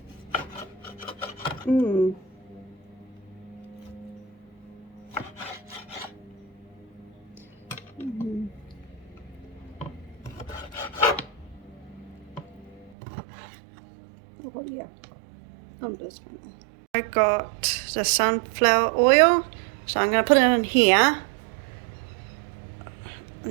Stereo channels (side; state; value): left; drops out; at 13.0 s